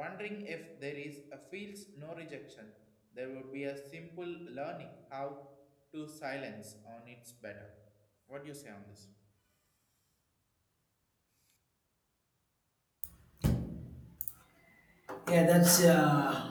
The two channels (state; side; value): identical; both; correlation 1.00